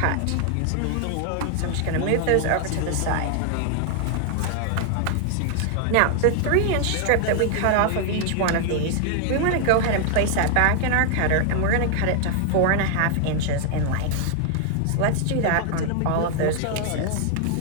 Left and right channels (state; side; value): different; both; correlation 0.00